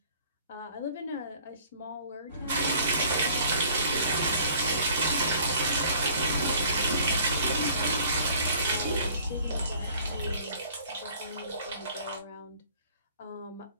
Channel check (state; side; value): inverted; both; correlation -0.53